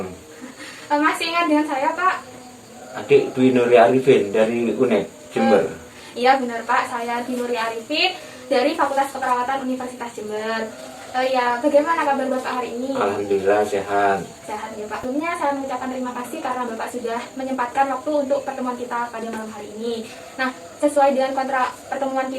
Masih ingat dengan saya Pak? Adik Dwi Nuria Arifin dari UNED Jember. Iya benar Pak, saya Dwi Nuria Arifin dari Fakultas Keperawatan Universitas Jember. Ya, bagaimana kabar Bapak hari ini? Alhamdulillah sehat. Sehat ya Pak. Sebelumnya saya mengucapkan terima kasih karena Bapak sudah menyempatkan waktu untuk pertemuan kita pada malam hari ini. Nah, sesuai dengan kontrak pertemuan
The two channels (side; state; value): both; identical; correlation 1.00